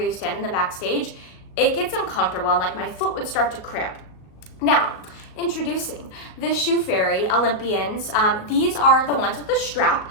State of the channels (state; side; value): late; right; 37 ms